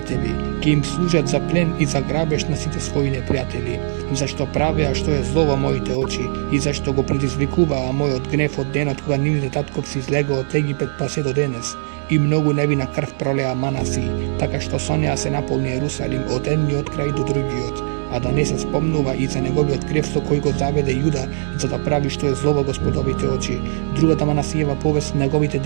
ќе им служат за плен и за грабеж на сите своји непријатели, зашто правеа што е зло во моите очи и зашто го предизвикуваа мојот гнев од денот кога нивните татковци излегоа од Египет па се до денес. И многу невина крв пролеа Манаси, така што со неа се наполни Јерусалим од едниот крај до другиот, а да не се спомнува и за неговиот грев со кој го заведе Јуда, за да прави што е зло во Господовите очи. Другата Манасиева повест, неговите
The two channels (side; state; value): left; silent; digital silence